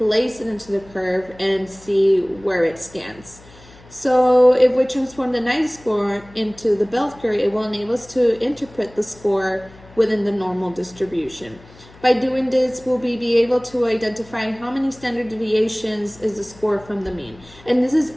it into the curve and see where it stands. So if we transform the 90 score into the bell curve, it will enable us to interpret the score within the normal distribution. By doing this, we'll be able to identify how many standard deviations is the score from the mean. And this is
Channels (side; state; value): left; noise; hum, 23 dB below the sound